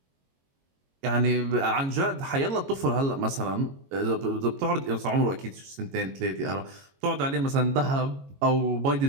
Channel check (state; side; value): late; left; 22 ms